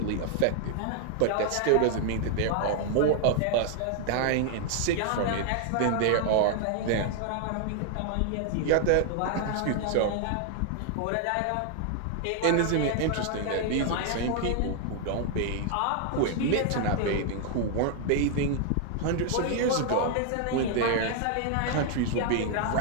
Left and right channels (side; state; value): both; different; correlation 0.00